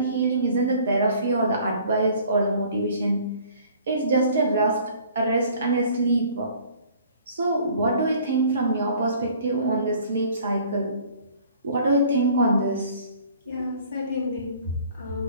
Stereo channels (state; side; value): inverted; both; correlation -0.53